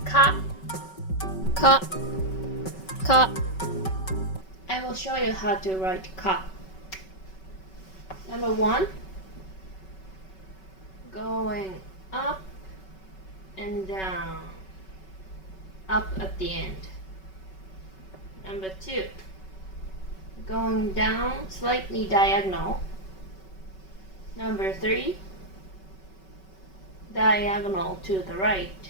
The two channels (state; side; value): late; right; 5.3 ms